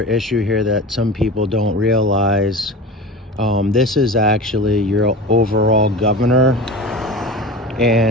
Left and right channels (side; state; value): both; normal; correlation 0.31